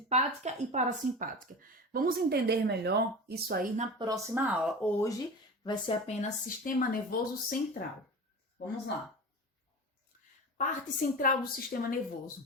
e parasimpática. Vamos entender melhor isso aí na próxima aula. Hoje vai ser apenas sistema nervoso central. Vamos lá. Parte central do sistema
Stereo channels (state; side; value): normal; both; correlation 0.31